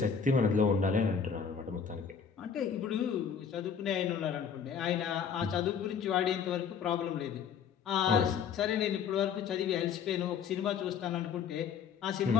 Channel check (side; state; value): right; quieter; 6.9 dB